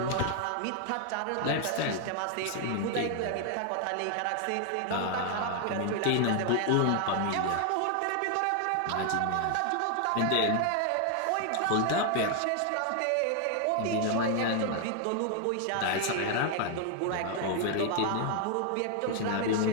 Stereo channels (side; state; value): both; different; correlation 0.00